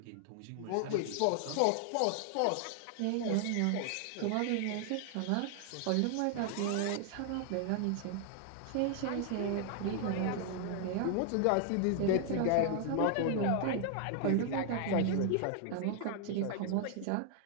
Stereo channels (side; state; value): both; different; correlation 0.00